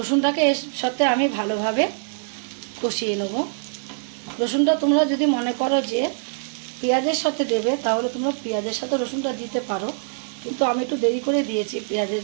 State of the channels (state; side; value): silent; left; digital silence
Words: এর সাথে আমি ভালোভাবে কষিয়ে নেব। রসুনটা তোমরা যদি মনে করো যে পেঁয়াজের সাথে দেবে তাহলে তোমরা পেঁয়াজের সাথে রসুনটা দিতে পারো, কিন্তু আমি একটু দেরি করে দিয়েছি, পেঁয়াজের